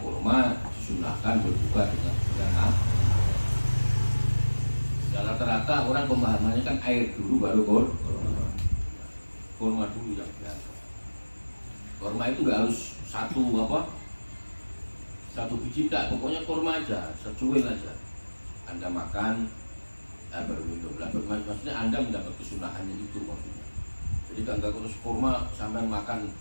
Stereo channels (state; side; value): inverted; both; correlation -1.00